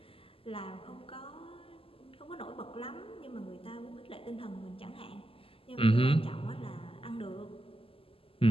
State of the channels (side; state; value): right; late; 0.26 ms